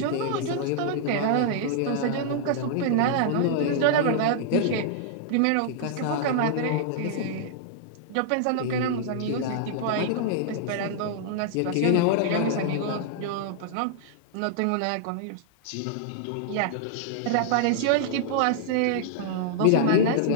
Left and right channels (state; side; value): different; both; correlation -0.01